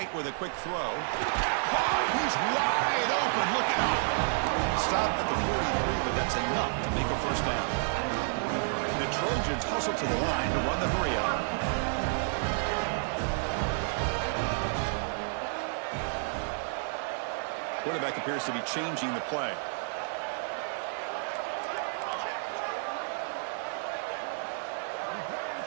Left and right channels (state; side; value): silent; left; 57 dB below the other